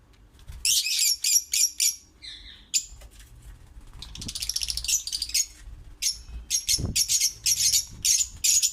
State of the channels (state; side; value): identical; both; correlation 1.00